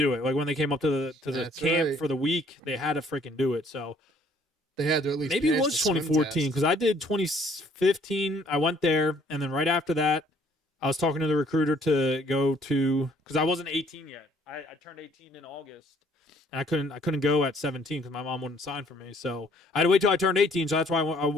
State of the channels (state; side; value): normal; both; correlation 0.61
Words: it. Like when they came up to the That's camp right. for the week, they had to freaking do it. So they had to at least. maybe it pass was the swim 2014 test. because I did 2015. I went there, and then right after that, I was talking to the recruiter to go to because I wasn't 18 yet. I turned 18 in August, and I couldn't go at 17 because my mom wouldn't sign for me. So I had to wait till I turned 18. So that's why